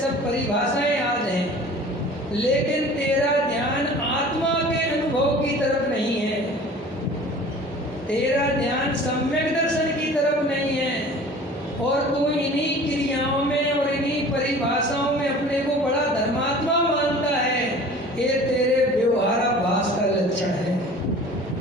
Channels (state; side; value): normal; both; correlation 0.44